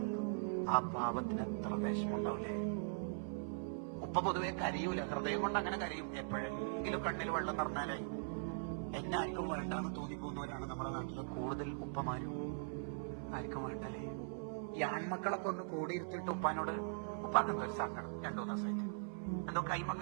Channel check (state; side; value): silent; left; 50 dB below the other